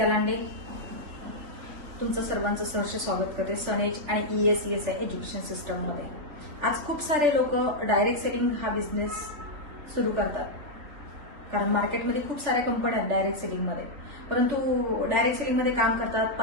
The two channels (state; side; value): late; left; 3.4 ms